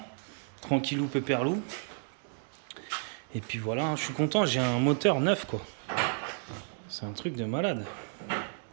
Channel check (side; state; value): left; silent; 56 dB below the other